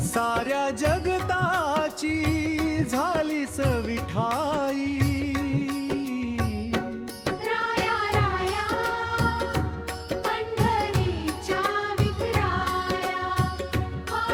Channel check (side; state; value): both; identical; correlation 1.00